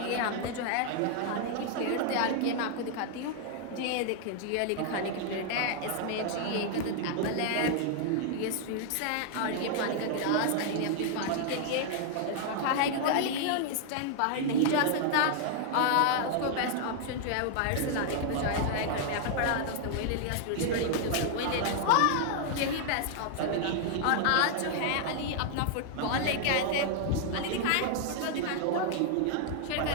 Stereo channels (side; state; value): both; different; correlation 0.00